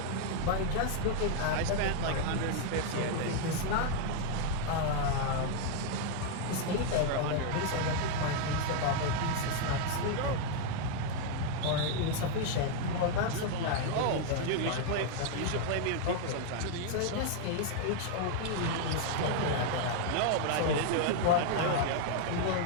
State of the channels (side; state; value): both; different; correlation 0.00